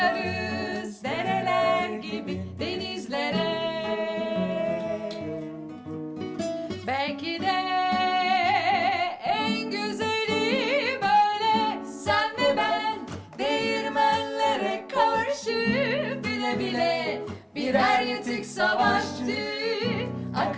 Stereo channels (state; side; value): identical; both; correlation 1.00